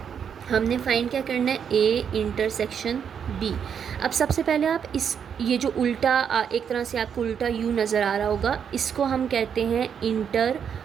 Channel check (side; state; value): left; quieter; 7.7 dB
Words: हमने फाइंड क्या करना है, A इंटरसेक्शन B। अब सबसे पहले आप ये जो उल्टा एक तरह से आपको उल्टा U नज़र आ रहा होगा, इसको हम कहते हैं